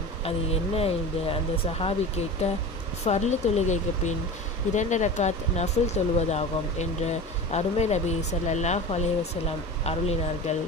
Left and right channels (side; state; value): both; normal; correlation 0.32